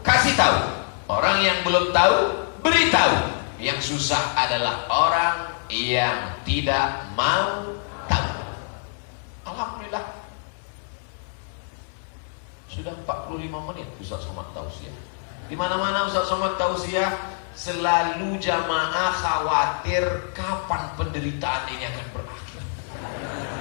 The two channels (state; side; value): silent; right; 58 dB below the other